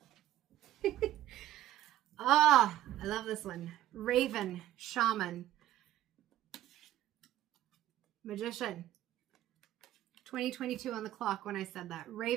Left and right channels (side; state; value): left; quieter; 13.2 dB